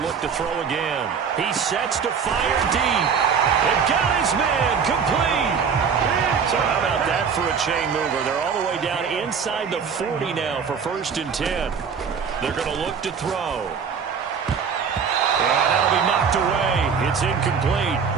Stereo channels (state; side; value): quieter; left; 6.4 dB